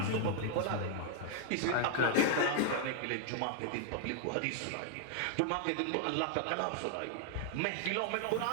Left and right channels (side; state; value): both; different; correlation 0.00